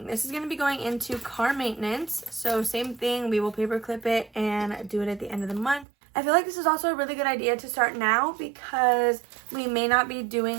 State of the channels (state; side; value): drops out; left; at 5.9 s